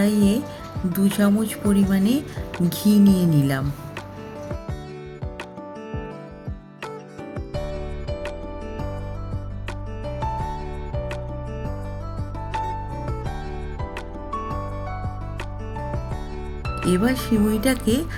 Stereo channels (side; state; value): both; identical; correlation 1.00